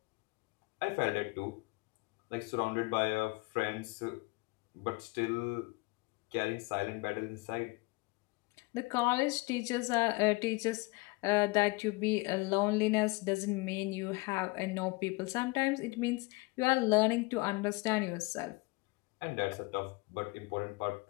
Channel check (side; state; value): right; quieter; 25.2 dB